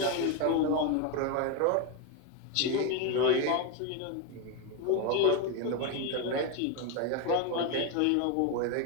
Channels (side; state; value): both; different; correlation 0.02